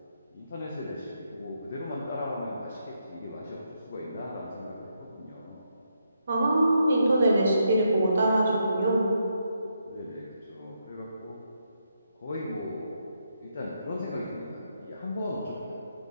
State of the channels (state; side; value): inverted; both; correlation -0.80